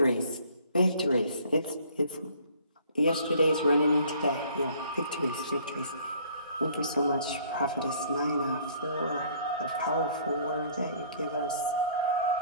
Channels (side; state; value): both; inverted; correlation -0.57